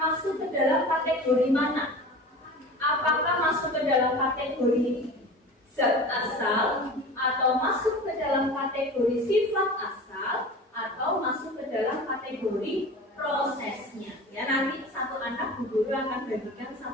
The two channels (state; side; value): normal; both; correlation 0.36